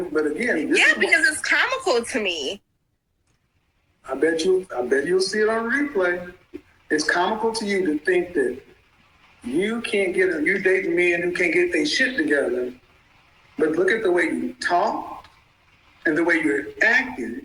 but again, because it's comical to me. I bet you'll see it on replay. It's comical to you to think that you dating men who can't get their shit together. But look at the way you talk and the way you're acting.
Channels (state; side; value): identical; both; correlation 1.00